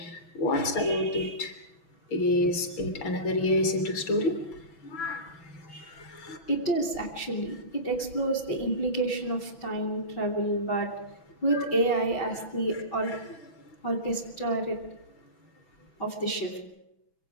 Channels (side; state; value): right; late; 6.0 ms